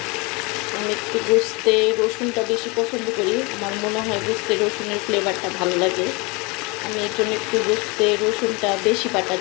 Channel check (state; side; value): quieter; right; 27.7 dB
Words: আমি একটু গোস্তে রসুনটা বেশি পছন্দ করি। আমার মনে হয় গোস্তে রসুনের ফ্লেভারটা ভালো লাগে। আমি এর জন্য একটু গোস্তে রসুনটা বেশি বাটা